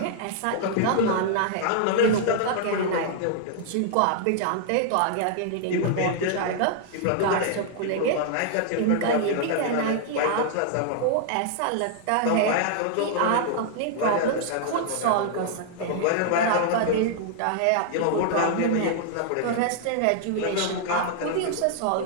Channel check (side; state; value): both; different; correlation -0.01